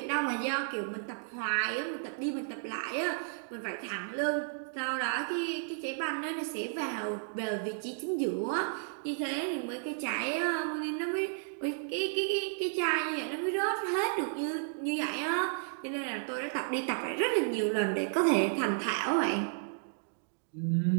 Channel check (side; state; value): left; silent; digital silence